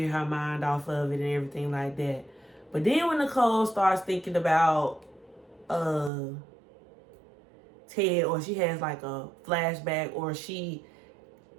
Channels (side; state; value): left; drops out; at 6.1 s